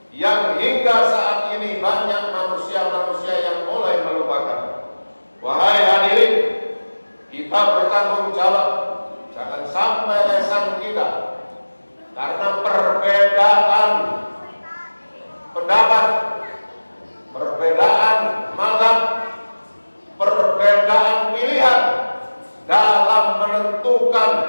yang hingga saat ini banyak manusia-manusia yang mulai melupakan. Wahai hadirin, kita bertanggung jawab, jangan sampai lesan kita karena perbedaan pendapat, perbedaan mazhab, perbedaan pilihan dalam menentukan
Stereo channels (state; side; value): inverted; both; correlation -1.00